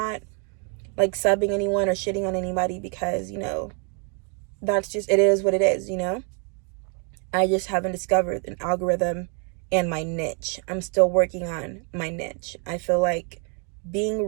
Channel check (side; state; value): left; quieter; 38.7 dB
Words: like subbing anyone or shitting on anybody because, you know, that's just, it is what it is, you know? I just haven't discovered an algorithm and my niche. I'm still working on my niche. I feel like being